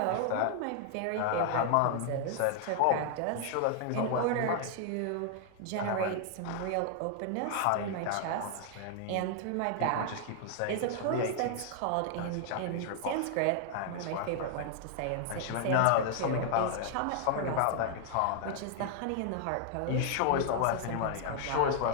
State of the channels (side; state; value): both; different; correlation 0.00